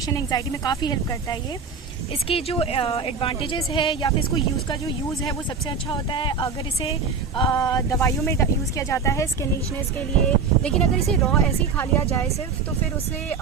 एंग्जाइटी में काफ़ी हेल्प करता है ये. इसकी जो एडवांटेजेस है या फिर इसको का जो यूज़ है वो सबसे अच्छा होता है अगर इसे दवाइयों में यूज़ किया जाता है स्किन रीचनेस के लिए. लेकिन अगर इसे रॉ ऐसे ही खा लिया जाए सिर्फ तो फिर उससे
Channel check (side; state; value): left; quieter; 5.3 dB